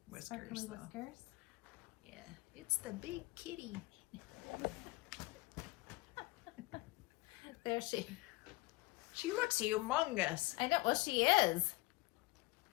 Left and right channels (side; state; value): right; quieter; 22.3 dB